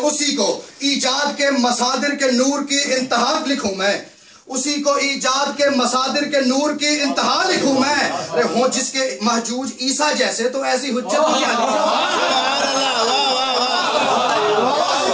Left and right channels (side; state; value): both; identical; correlation 1.00